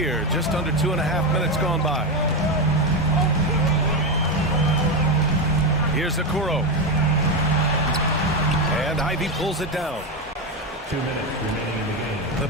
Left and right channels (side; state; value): both; normal; correlation 0.12